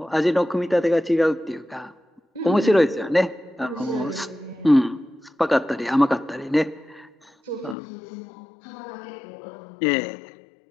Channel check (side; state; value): right; drops out; at 7.8 s